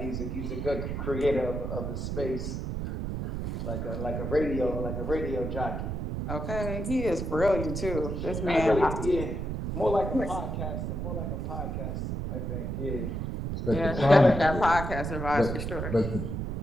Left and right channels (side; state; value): right; noise; rumble, 3 dB below the sound